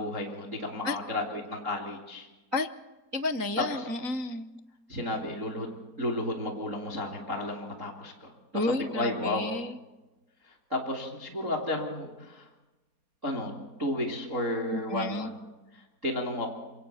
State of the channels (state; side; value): late; left; 4.3 ms